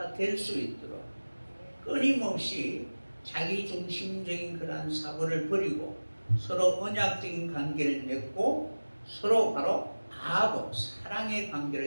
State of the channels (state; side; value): inverted; both; correlation -1.00